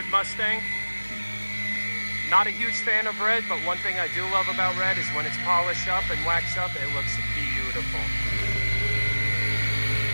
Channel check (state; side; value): inverted; both; correlation -1.00